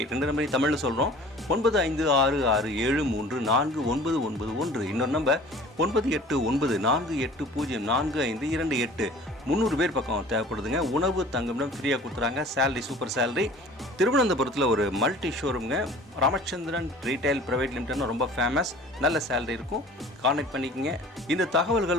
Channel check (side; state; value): both; normal; correlation 0.46